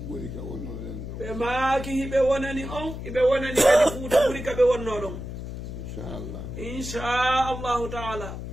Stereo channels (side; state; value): left; noise; hum, 8 dB below the sound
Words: ɓuri ka wonnoɗen ɗo ɓe maaki hiɓe wonani on hiɓe wonani kadi fuuta ɓuri ka ɓe wonno ɗon inchallah inchallahu taala